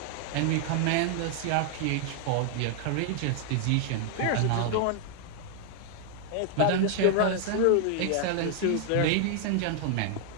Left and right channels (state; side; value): different; both; correlation 0.00